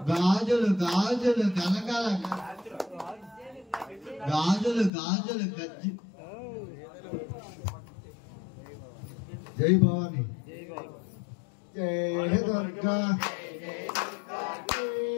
గాజులు గాజులు కలకల గాజులు గాజులు గజ్జి జై భవాని జై దుర్గా జై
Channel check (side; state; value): right; drops out; at 4.9 s